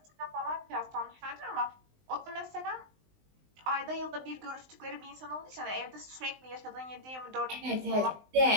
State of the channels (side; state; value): left; late; 19 ms